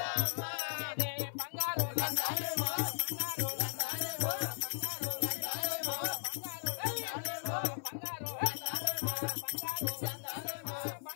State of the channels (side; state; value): right; silent; 53 dB below the other